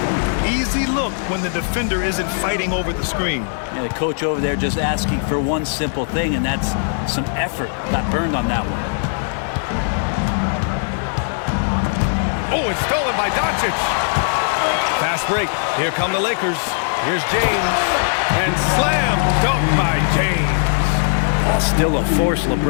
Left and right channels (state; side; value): silent; right; digital silence